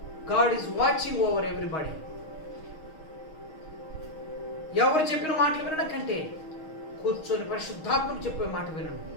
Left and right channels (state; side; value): late; right; 6.4 ms